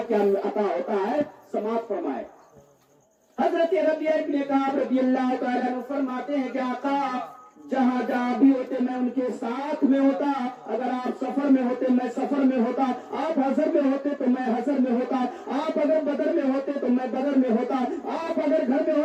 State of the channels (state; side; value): identical; both; correlation 1.00